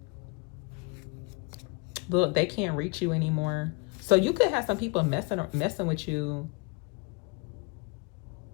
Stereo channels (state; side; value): quieter; right; 29.6 dB